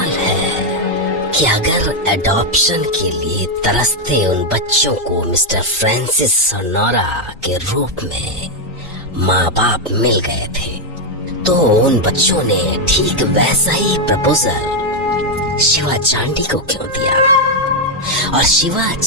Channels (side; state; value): both; normal; correlation 0.02